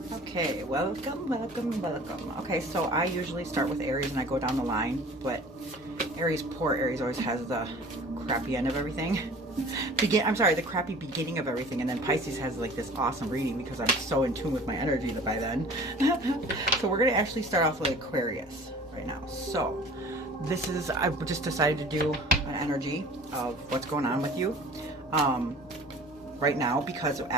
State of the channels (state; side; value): normal; both; correlation 0.46